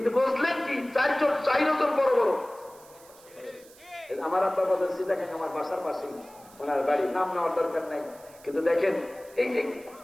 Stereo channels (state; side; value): noise; right; hiss, 24 dB below the sound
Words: বুঝলেন কি? চারজন বড় বড়। আমার আব্বা বলছি দেখেন আমার বাসার পাশেই ওনার বাড়ি, নাম নেওয়ার দরকার নাই, কিন্তু দেখেন এই